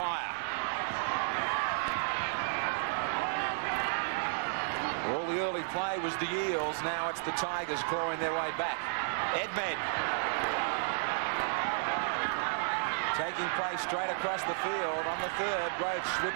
All the early play was the Eels. Now it's the Tigers clawing their way back. Edmed taking play straight across the field on the third. Roach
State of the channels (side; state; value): left; silent; digital silence